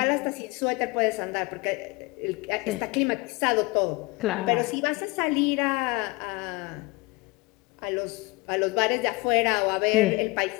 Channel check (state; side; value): quieter; right; 24.6 dB